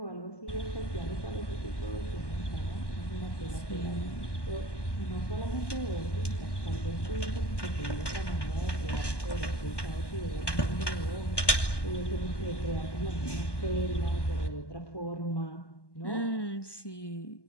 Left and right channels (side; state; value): right; late; 1.2 ms